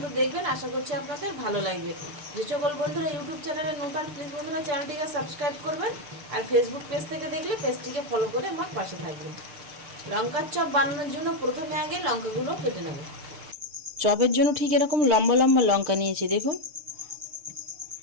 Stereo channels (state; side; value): late; left; 6.7 ms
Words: দেখবেন, আশা করছি আপনাদের ভালো লাগবে। যে সকল বন্ধুরা ইউটিউব চ্যানেলে নতুন, প্লিজ বন্ধুরা চ্যানেলটিকে সাবস্ক্রাইব করবেন, আর ফেসবুক পেজ থেকে দেখলে পেজটিকে ফলো করে আমার পাশে থাকবেন। লঙ্কার চপ বানানোর জন্য প্রথমে আগে লঙ্কাগুলো কেটে নেব। চপের জন্য ঠিক এরকম লম্বা লম্বা লঙ্কা নিয়েছি দেখুন।